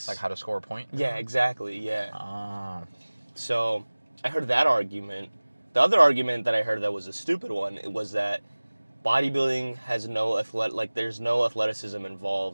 Like how to score a point? Yeah, exactly. Yeah. So I heard that argument. The other argument that I heard that was a stupid one was that bodybuilding has there's no athleticism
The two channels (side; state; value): both; inverted; correlation -1.00